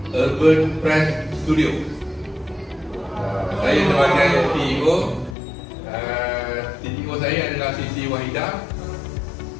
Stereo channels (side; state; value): right; drops out; at 5.4 s